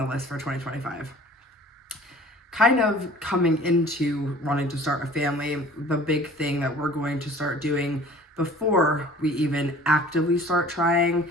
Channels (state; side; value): normal; both; correlation 0.48